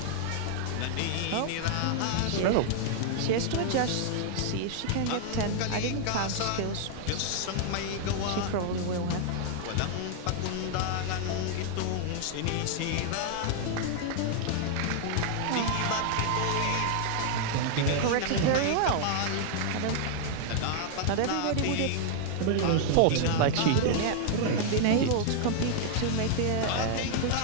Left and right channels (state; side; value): different; both; correlation 0.00